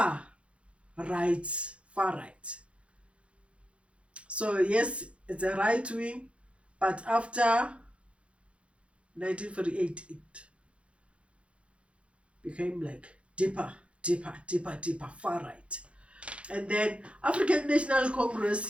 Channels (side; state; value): left; late; 0.060 ms